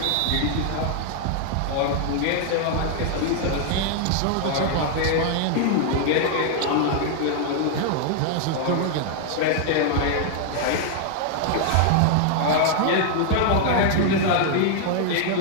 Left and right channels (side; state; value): both; different; correlation 0.00